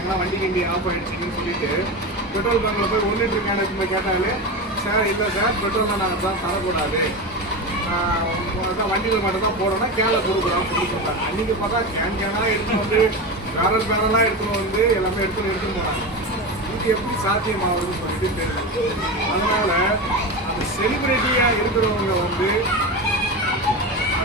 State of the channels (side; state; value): both; normal; correlation 0.21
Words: வண்டி கிண்டி ஆஃப் ஆகிடுச்சின்னு சொல்லிட்டு பெட்ரோல் பங்கில் போய் 1 லிட்டர் கேனுக்கு போய் கேட்டாலே, சார் இல்லை சார் பெட்ரோல் நாங்கள் தான் தரக்கூடாது, வண்டிகள் மட்டும் தான் போடணும், கேனை கொடுக்குறோம் அப்படின்னு சொல்லிட்டாங்க. அன்றைக்கி பார்த்தா கேனாக எடுத்துன்னு பேரலாக எடுத்துன்னு எல்லாமே எடுத்துன்னு போனாங்க. இது எப்படி சாத்தியமாகுதுன்னு சொல்லிட்டு தெரியல. அதனால் அந்த செலிபிரிட்டியாக இருக்கிறவங்க